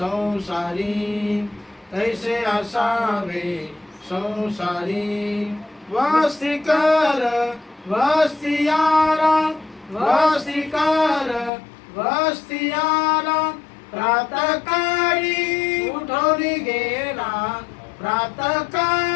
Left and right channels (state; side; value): drops out; right; at 11.5 s